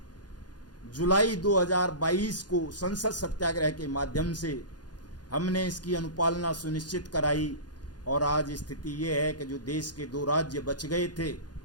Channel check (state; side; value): late; right; 0.69 ms